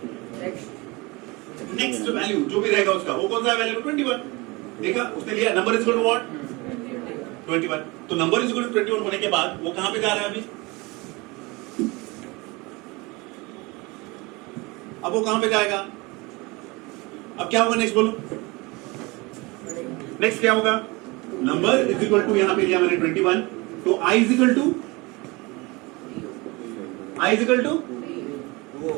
नेक्स्ट वैल्यू जो भी रहेगा उसका, वो कौन सा वैल्यू? 21। देखा उसने लिया, number is equal to what? 21। तो नंबर इज इक्वल टू 21 होने के बाद वो कहां पे जा रहा है अभी? अब वो कहां पे जाएगा? अब क्या होगा नेक्स्ट बोलो? नेक्स्ट क्या होगा? नंबर इज इक्वल टू, यहां पे लिया मैंने 21, तो I is equal to, I is equal to,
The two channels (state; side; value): quieter; left; 24.8 dB